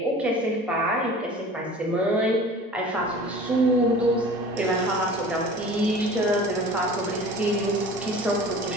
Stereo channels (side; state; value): both; normal; correlation 0.42